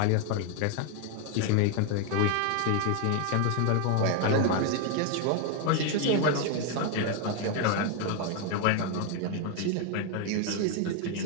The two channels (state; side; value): different; both; correlation 0.01